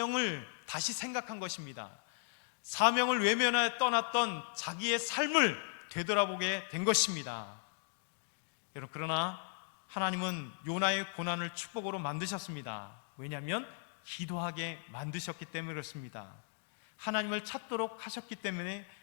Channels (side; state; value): right; silent; digital silence